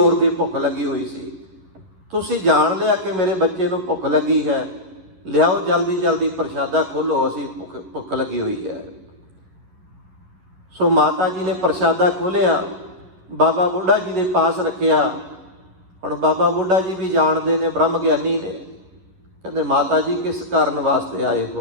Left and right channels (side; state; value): left; late; 11 ms